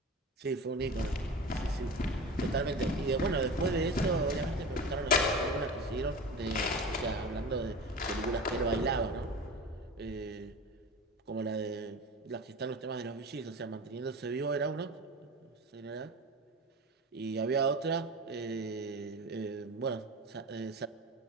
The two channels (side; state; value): both; normal; correlation 0.31